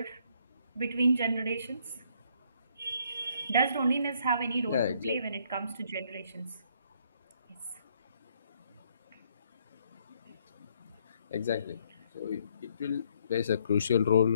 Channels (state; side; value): inverted; both; correlation -0.68